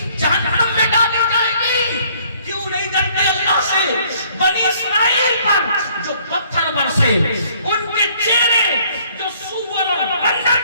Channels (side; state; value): both; inverted; correlation -0.62